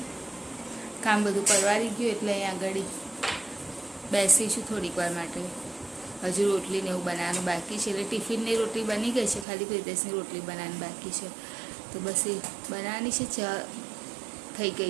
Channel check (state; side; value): drops out; left; at 9.5 s